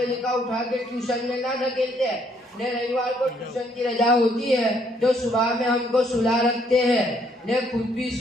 का उठा के ट्यूशन में ना धकेलते। ने रविवार को ट्यूशन की रजा होती है तो सुबह में हमको सुला रखते हैं, ने खुद भी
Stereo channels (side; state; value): both; normal; correlation 0.68